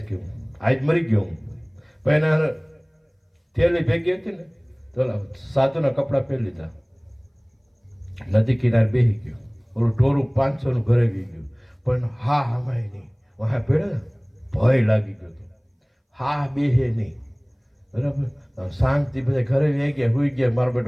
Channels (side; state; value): both; identical; correlation 1.00